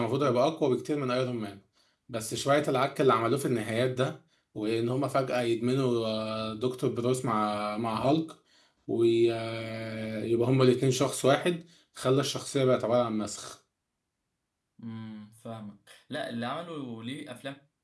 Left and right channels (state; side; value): identical; both; correlation 1.00